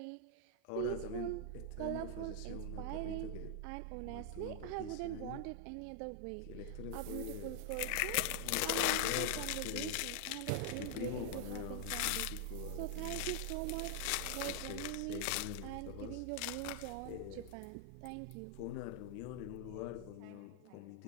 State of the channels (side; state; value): both; different; correlation 0.00